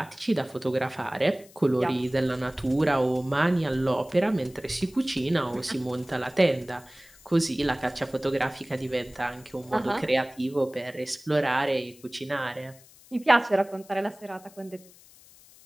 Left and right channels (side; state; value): left; noise; hiss, 24 dB below the sound